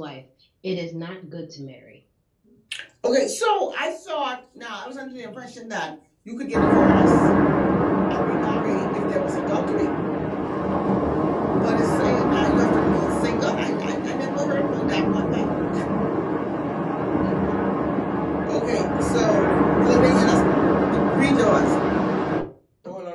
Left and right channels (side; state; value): both; identical; correlation 1.00